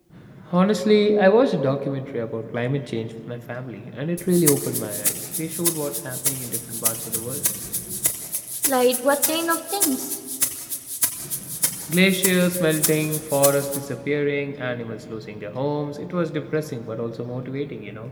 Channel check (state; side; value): identical; both; correlation 1.00